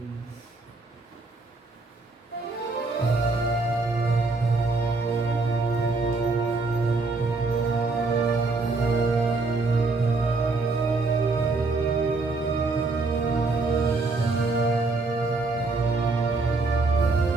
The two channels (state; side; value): quieter; left; 3.6 dB